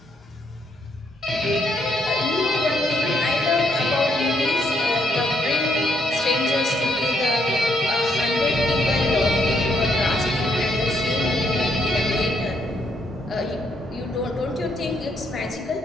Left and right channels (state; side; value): normal; both; correlation 0.73